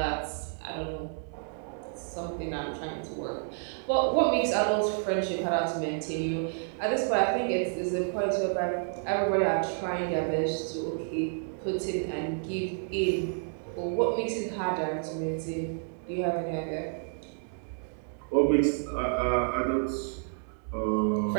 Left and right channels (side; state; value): left; silent; 58 dB below the other